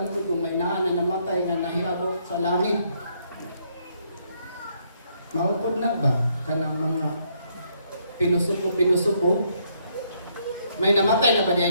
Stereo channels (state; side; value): inverted; both; correlation -0.72